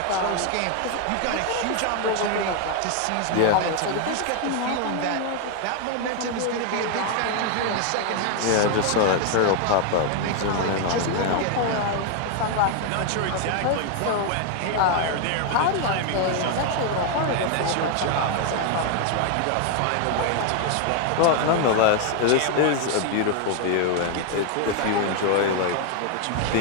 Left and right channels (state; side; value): different; both; correlation 0.01